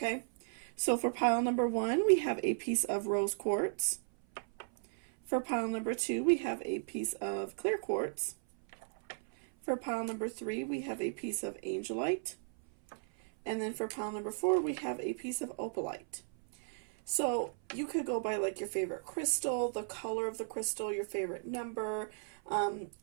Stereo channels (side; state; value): left; silent; 54 dB below the other